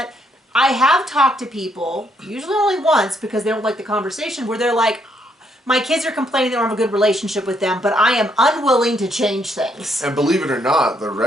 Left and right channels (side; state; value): both; normal; correlation 0.73